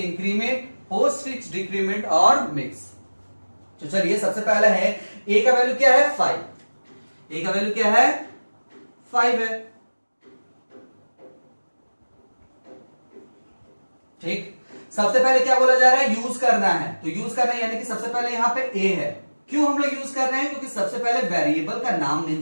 post fix decrement और मिक्स। तो चलिए सबसे पहले है a का वैल्यू क्या है 5, a का वैल्यू क्या है 5 है। ठीक, सबसे पहले क्या बोला जा रहा है यूज करना है, तो यूज करना है यानी कि सबसे पहले यहां पे a है। क्यों हम लोग यूज कर रहे हैं, क्योंकि सबसे पहले वेरिएबल का नाम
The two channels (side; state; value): both; inverted; correlation -1.00